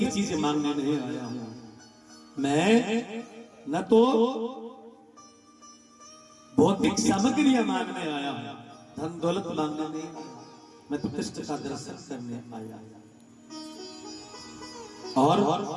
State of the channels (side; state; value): both; identical; correlation 1.00